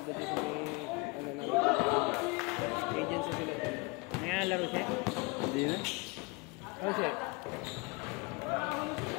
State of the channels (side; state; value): right; quieter; 27.6 dB